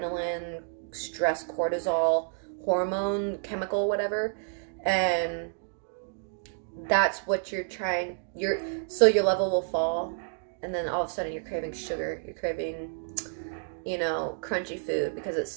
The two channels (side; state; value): left; silent; digital silence